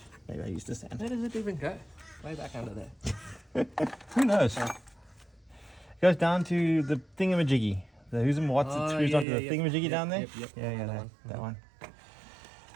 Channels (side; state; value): left; drops out; at 9.2 s